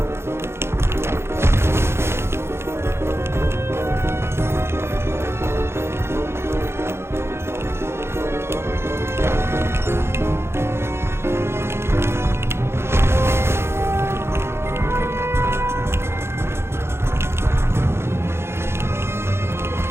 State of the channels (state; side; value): late; left; 0.12 ms